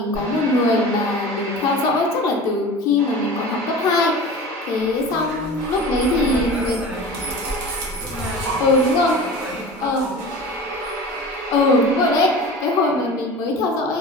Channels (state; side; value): normal; both; correlation 0.36